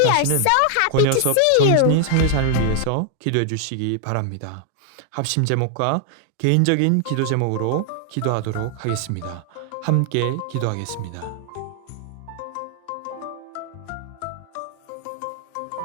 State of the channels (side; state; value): both; different; correlation 0.00